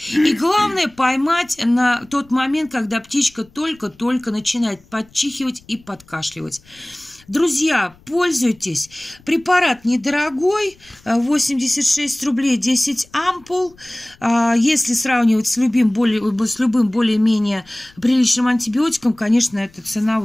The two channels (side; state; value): left; noise; rumble, 28 dB below the sound